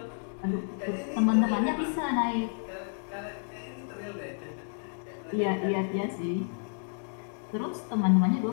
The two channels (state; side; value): silent; right; 55 dB below the other